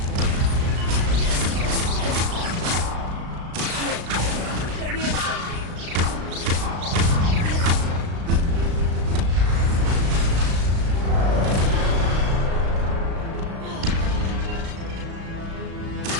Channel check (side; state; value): left; late; 36 ms